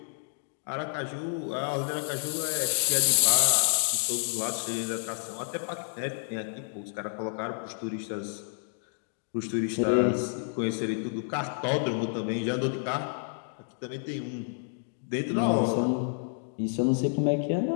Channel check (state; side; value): silent; right; digital silence